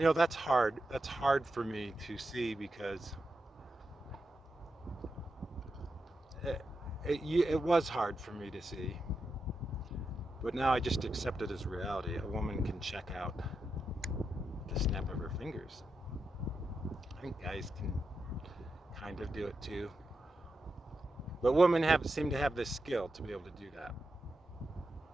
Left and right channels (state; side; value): normal; both; correlation 0.87